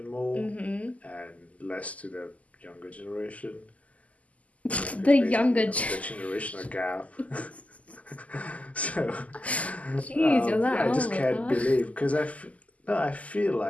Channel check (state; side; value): late; right; 0.070 ms